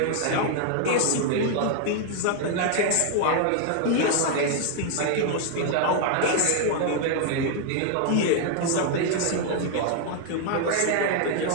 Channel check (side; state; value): both; different; correlation 0.00